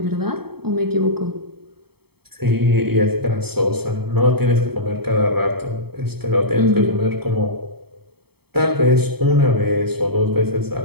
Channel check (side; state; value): left; late; 0.96 ms